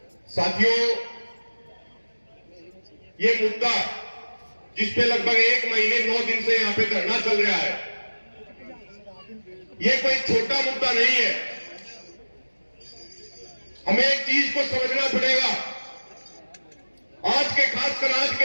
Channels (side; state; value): both; inverted; correlation -1.00